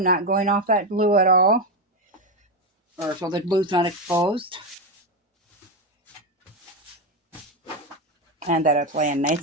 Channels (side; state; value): both; normal; correlation 0.10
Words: not going off that glue at all, or so the glue's not exposed. And that it's laying